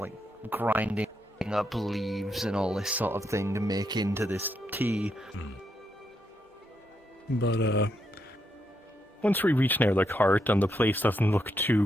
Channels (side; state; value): both; normal; correlation 0.80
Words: grinding up leaves and all this sort of thing to make into this tea. But once we reach near the cart and the place doesn't look